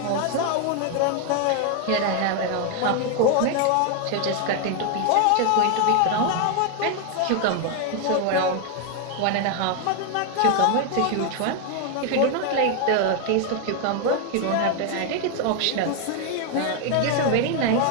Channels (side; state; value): both; different; correlation 0.01